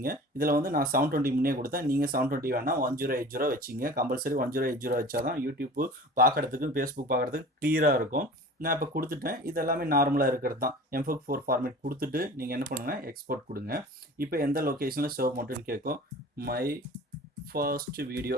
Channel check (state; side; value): normal; both; correlation 0.40